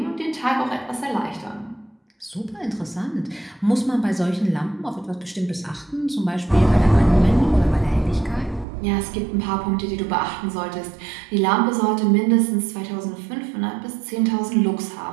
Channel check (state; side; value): drops out; left; at 8.7 s